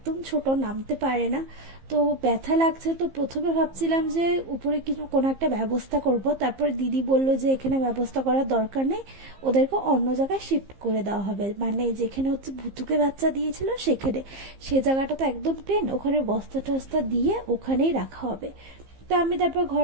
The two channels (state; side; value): late; left; 15 ms